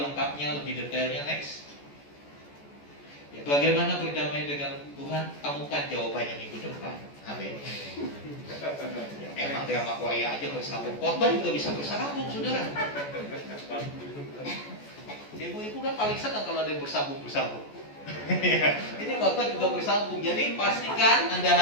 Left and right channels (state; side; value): late; right; 14 ms